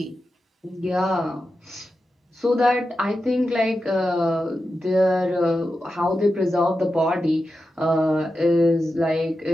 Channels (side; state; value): both; normal; correlation 0.90